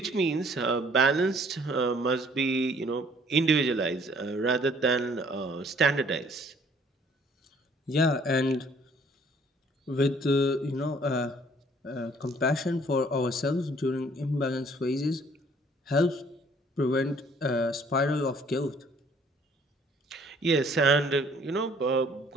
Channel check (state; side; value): normal; both; correlation 0.59